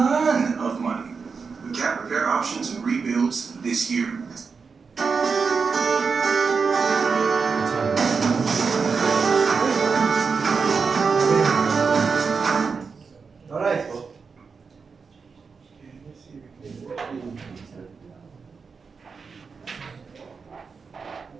of money with cat repair options and rebuilds this year. Alright.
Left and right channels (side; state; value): left; quieter; 5.2 dB